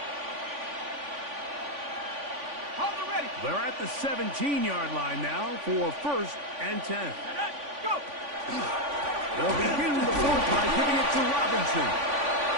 They're at the 17-yard line now for first and 10. Go! They'll begin the fourth by giving it to Robinson.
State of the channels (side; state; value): left; late; 3.5 ms